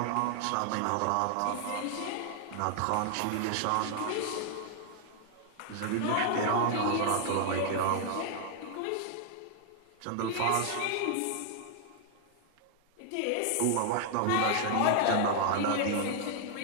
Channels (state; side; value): different; both; correlation 0.00